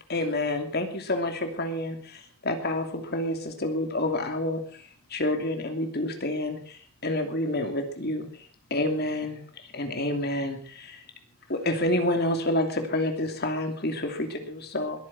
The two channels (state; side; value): normal; both; correlation 0.08